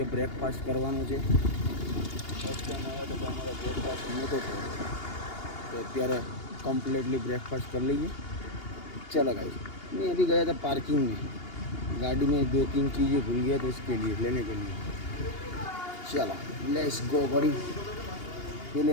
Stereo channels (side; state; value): right; late; 2.8 ms